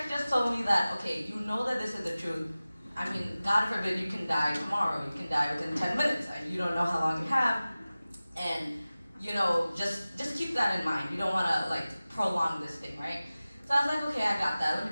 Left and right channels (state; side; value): inverted; both; correlation -0.97